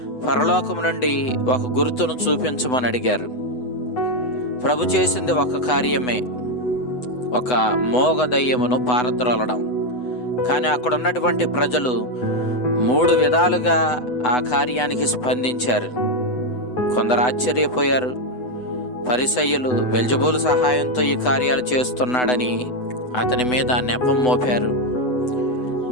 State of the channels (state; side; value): late; right; 8.0 ms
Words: పరలోకము నుండి ఒక గుర్తును చూపించమని అడిగారు. ప్రభు చేసింది ఒక కార్యమే, ఒక మోగ దయ్యమును పారద్రోలడం. కానీ అక్కడ ఉన్నటువంటి ప్రజలు 3 విధాలుగా ఆ కార్యానికి స్పందించారు. కొందరు ఆశ్చర్యపోయారు. పరిసయ్యులు బెల్జబూలు సహాయంతో ఈ కార్యాలు చేస్తున్నాడని అతని మీద నెపం మోపారు.